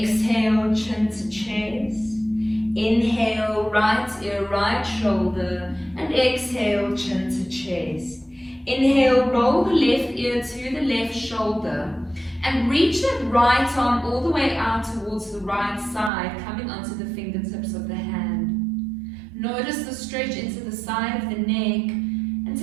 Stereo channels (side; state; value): left; drops out; at 16.1 s